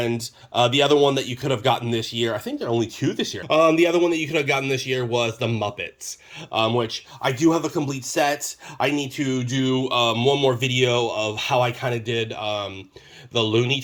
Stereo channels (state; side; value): identical; both; correlation 1.00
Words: the other one that you could have gotten this year, I think there are only two this year. The other one that you could have gotten this year was the Muppets, which I do have a complete set. I need to do one more video of how I kind of did the Looney